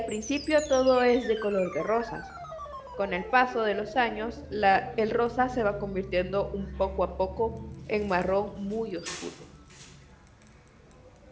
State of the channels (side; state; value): both; identical; correlation 1.00